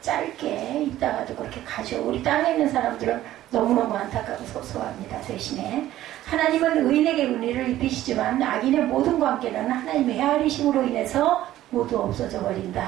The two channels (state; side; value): quieter; left; 13.9 dB